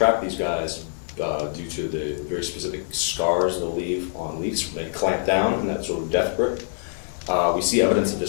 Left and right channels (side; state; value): right; silent; digital silence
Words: these guys due to the very specific scars they'll leave on leaves when they clamp down in that sort of death grip. We see evidence of